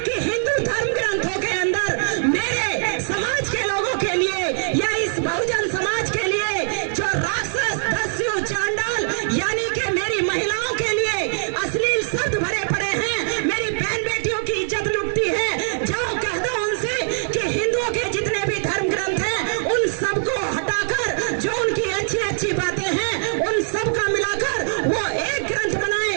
कि हिंदू धर्म ग्रंथों के अंदर मेरे समाज के लोगों के लिए या इस बहुजन समाज के लिए जो राक्षस दस्यु चांडाल यानी कि मेरी महिलाओं के लिए अश्लील शब्द भरे पड़े हैं, मेरी बहन बेटियों की इज्जत लुटती है, जाओ कह दो उनसे कि हिंदुओं के जितने भी धर्म ग्रंथ हैं उन सबको हटाकर जो उनकी अच्छी अच्छी बातें हैं उन सब का मिलाकर वो एक ग्रंथ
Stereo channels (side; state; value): left; silent; digital silence